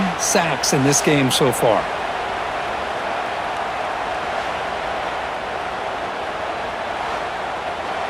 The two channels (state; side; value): identical; both; correlation 1.00